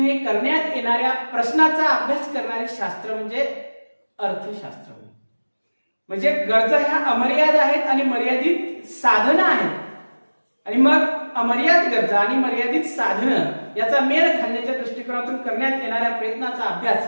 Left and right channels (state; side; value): inverted; both; correlation -1.00